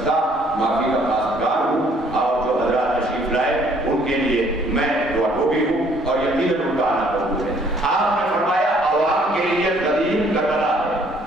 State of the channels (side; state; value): both; normal; correlation 0.62